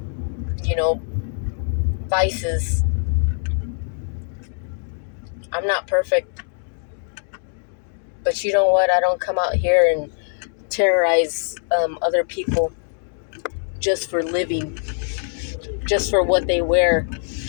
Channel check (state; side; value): silent; right; digital silence